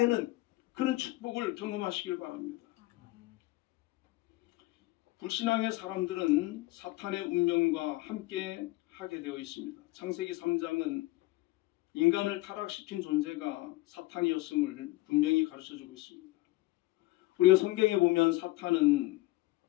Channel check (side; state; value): right; quieter; 19.7 dB